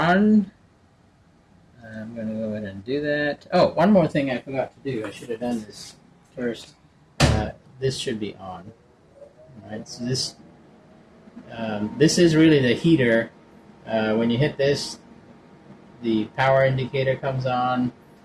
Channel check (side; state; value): both; identical; correlation 1.00